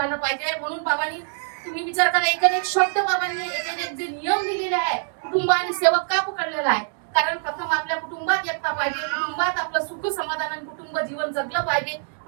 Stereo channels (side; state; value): left; silent; digital silence